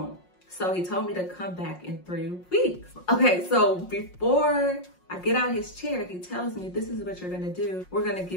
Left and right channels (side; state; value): right; late; 5.5 ms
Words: So he told me to come back in 3 weeks. Okay, so before I get out his chair, he tells me, this is what you're gonna do. We're gonna